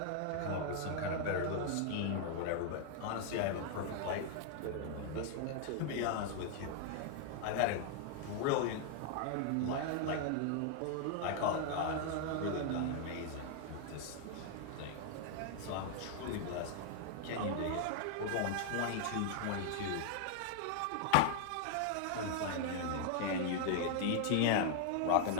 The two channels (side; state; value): both; different; correlation 0.00